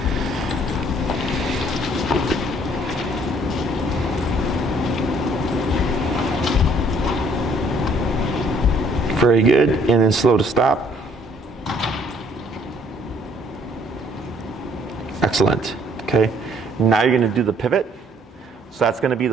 Very good. And then slow to stop. Excellent. Okay. Now you're going to do the pivot. So that's going to be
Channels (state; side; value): normal; both; correlation 0.62